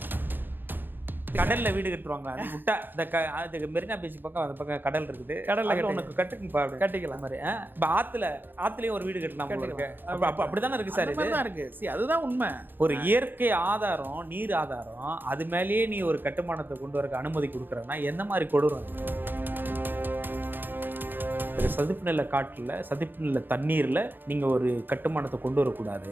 கடல்ல வீடு கட்டுவாங்க, அது விட்டா இந்த மெரினா பீச் பக்கம் அந்த பக்கம் கடல் இருக்குது, கடல்ல உனக்கு கட்டிக்கலாம் மாதிரி. இப்போ ஆத்துலயும் ஒரு வீடு கட்டலாம் இருக்கு. அப்படித்தானே இருக்கு சார், இதுதான் இருக்கு. அதுதான் உண்மை. ஒரு இயற்கை ஆதாரம், நீர் ஆதாரம், அது மேலேயே நீ ஒரு கட்டுமானத்தை கொண்டு வரக்கு அனுமதி கொடுக்குறன்னா எந்த மாதிரி கொடூரம்? சதுப்பு நில காட்டுல, சதுப்பு நில தண்ணீர்ல நீங்க ஒரு கட்டுமானத்தை கொண்டு வரக்கூடாது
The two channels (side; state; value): left; late; 0.095 ms